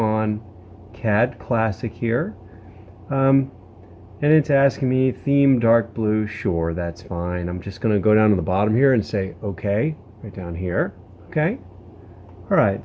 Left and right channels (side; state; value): both; identical; correlation 1.00